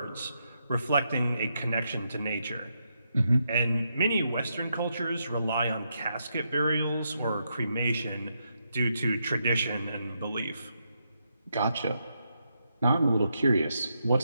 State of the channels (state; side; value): inverted; both; correlation -0.81